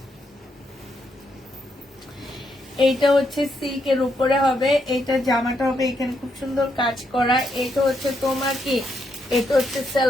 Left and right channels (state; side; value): normal; both; correlation 0.78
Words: এইটা হচ্ছে সিল্কের উপরে হবে, এইটা জামাটা হবে, এখানে খুব সুন্দর কাজ করা। এটা হচ্ছে তোমার কি, এটা হচ্ছে